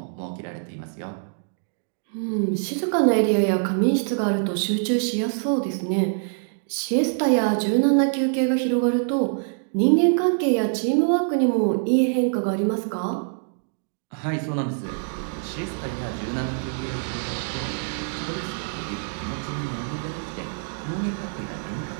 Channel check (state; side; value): silent; left; digital silence